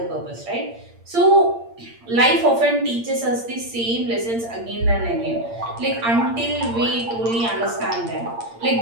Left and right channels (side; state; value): left; late; 8.7 ms